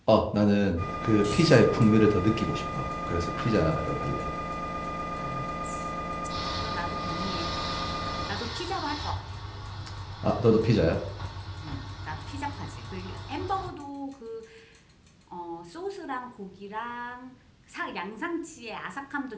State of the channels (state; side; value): identical; both; correlation 1.00